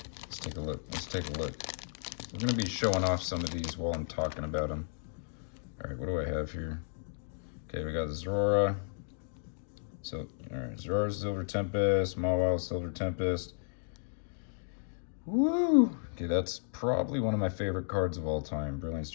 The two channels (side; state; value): right; silent; digital silence